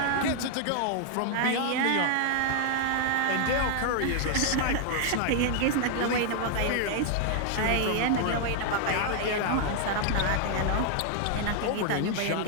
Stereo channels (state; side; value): different; both; correlation 0.00